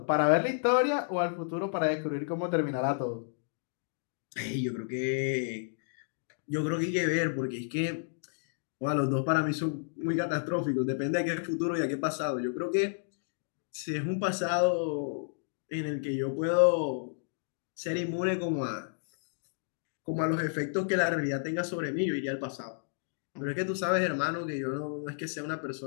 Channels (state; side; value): silent; right; digital silence